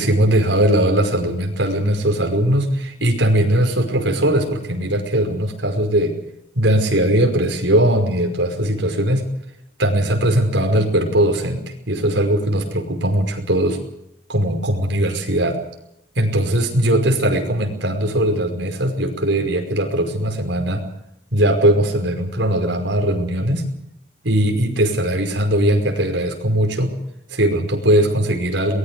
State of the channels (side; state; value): both; normal; correlation 0.40